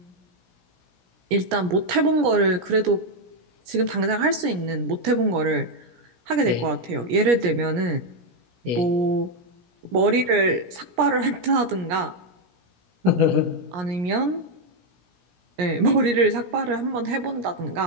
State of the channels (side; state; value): left; late; 17 ms